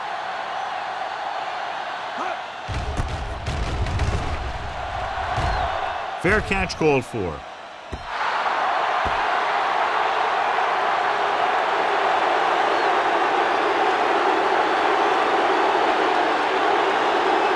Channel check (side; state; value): both; identical; correlation 1.00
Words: Fair catch called for.